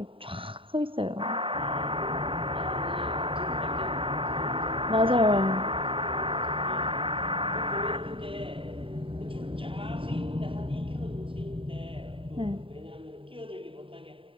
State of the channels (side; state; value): left; late; 0.25 ms